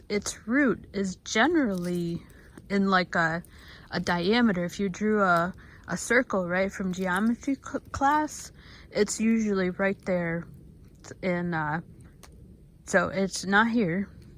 its root is generally in like a diameter. If you drew a circle, right, from geometry class, it's usually right there. So it's not here.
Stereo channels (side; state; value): both; identical; correlation 1.00